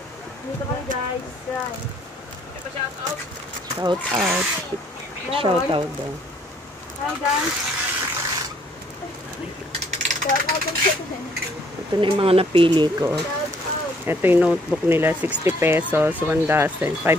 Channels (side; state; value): both; normal; correlation 0.65